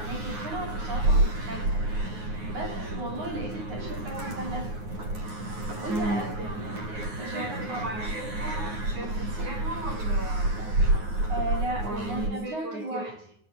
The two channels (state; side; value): late; left; 9.5 ms